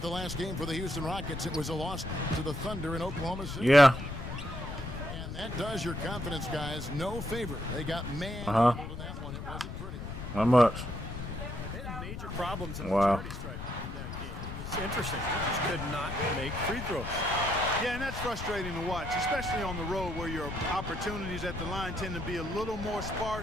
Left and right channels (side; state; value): left; noise; rumble, 7 dB below the sound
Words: the last game for the Houston Rockets, it was a loss to the Thunder in Oklahoma City. Yeah. And that does your confidence, guys, no favor. They got manhandled in that one. It wasn't pretty. Not much. They had major problems in the charity stripe in that game. It was interesting. They just could not make free throws. Yeah, and that's frustrating to watch, especially on the road where your opportunities at the line tend to be a little more